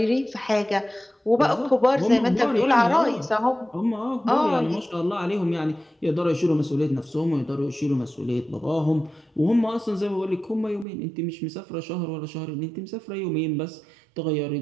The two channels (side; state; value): left; drops out; at 10.9 s